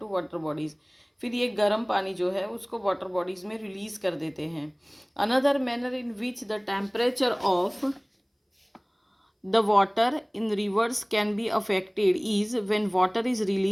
water bodies. फिर ये गर्म पानी जो है उसको वाटर बॉडीज़ में रिलीज़ कर देते हैं. Another manner in which the temperature of the water in rivers can be affected is when water is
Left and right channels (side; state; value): both; identical; correlation 1.00